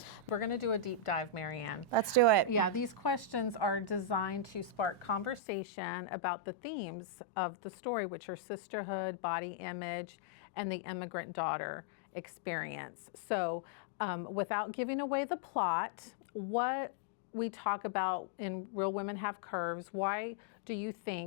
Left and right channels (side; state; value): right; drops out; at 5.4 s